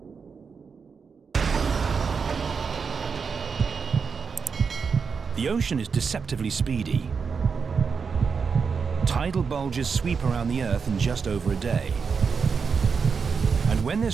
The ocean is deceptively speedy. Tidal bulges sweep around the Earth in just over a day. And when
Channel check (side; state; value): left; quieter; 5.6 dB